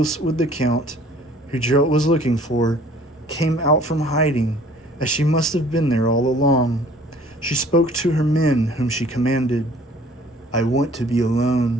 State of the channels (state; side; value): normal; both; correlation 0.53